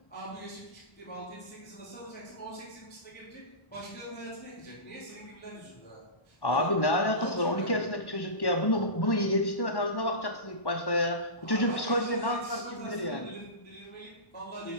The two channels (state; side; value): late; right; 1.1 ms